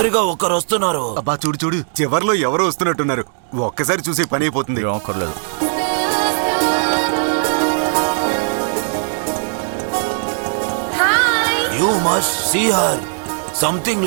ఒకరు వస్తున్నారు. అబ్బా చూడు చూడు, చివర్లో ఎవరో వస్తున్నట్టున్నారు. ఒక్కసారి చూసి పని అయిపోతుంది. రాకర్లేదు. You must see her. Something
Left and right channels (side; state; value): left; silent; digital silence